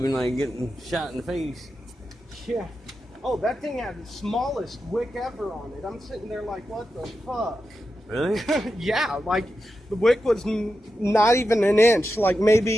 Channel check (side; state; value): both; normal; correlation 0.89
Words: and like getting shot in the face. Yeah. Oh, that thing had the smallest wick ever on it. I'm sitting there like, what the fuck? Really? Yeah, like the wick was not even an inch, like